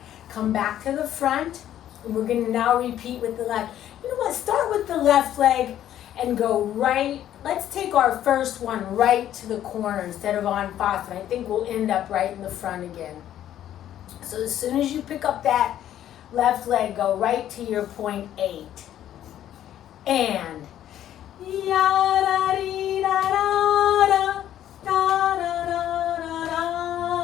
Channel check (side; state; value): right; quieter; 11.5 dB